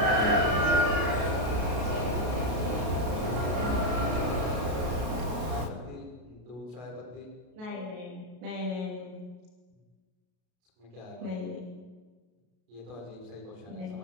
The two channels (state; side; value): late; left; 33 ms